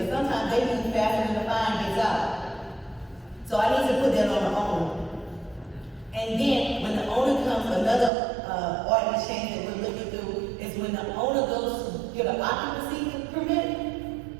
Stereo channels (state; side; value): drops out; left; at 8.1 s